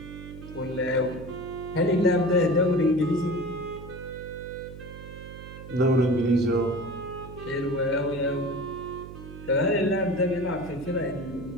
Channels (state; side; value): noise; right; hum, 13 dB below the sound